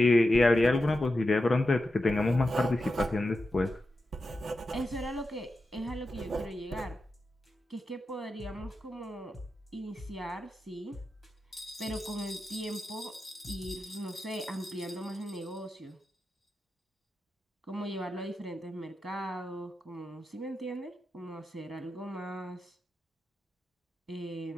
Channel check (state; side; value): normal; both; correlation 0.90